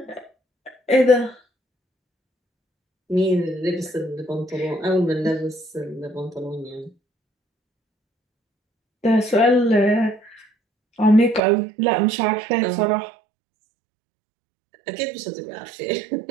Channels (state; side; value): drops out; left; at 11.4 s